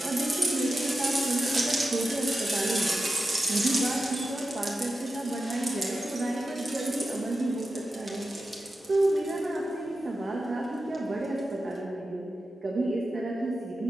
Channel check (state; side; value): normal; both; correlation 0.91